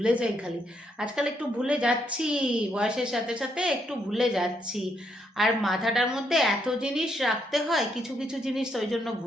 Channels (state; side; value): normal; both; correlation 0.76